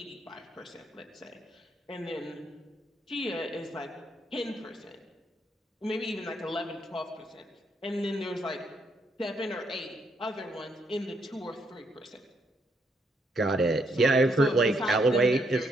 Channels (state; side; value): normal; both; correlation 0.75